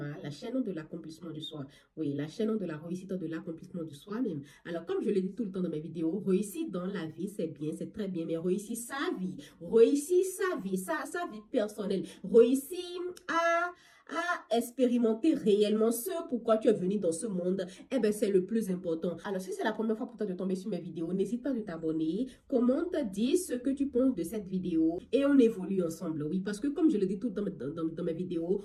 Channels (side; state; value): both; identical; correlation 1.00